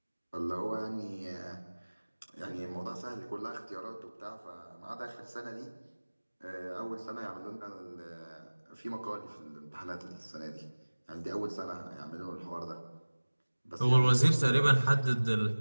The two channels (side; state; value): both; inverted; correlation -1.00